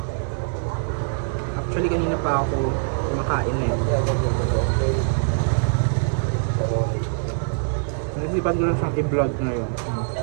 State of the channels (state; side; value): silent; left; 63 dB below the other